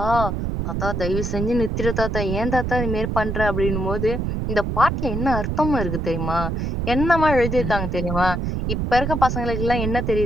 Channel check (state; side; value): noise; right; rumble, 2 dB below the sound